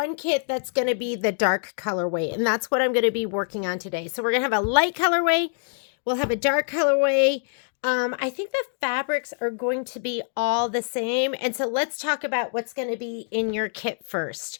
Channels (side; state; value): right; silent; digital silence